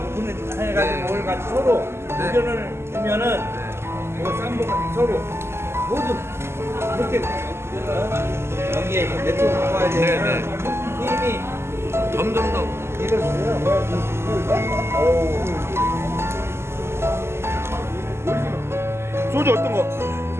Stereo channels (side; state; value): left; late; 0.12 ms